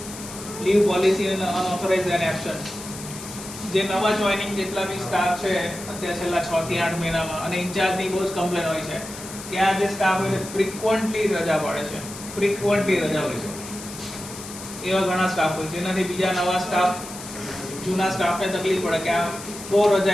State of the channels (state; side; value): noise; left; hiss, 12 dB below the sound